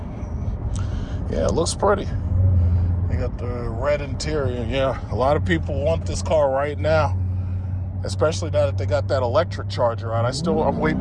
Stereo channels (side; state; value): both; identical; correlation 1.00